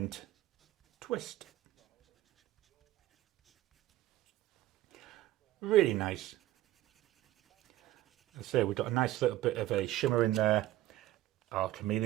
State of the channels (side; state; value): left; quieter; 14.9 dB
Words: Twist. Really nice. As I say, we've got a nice little bit of a shimmer in there, or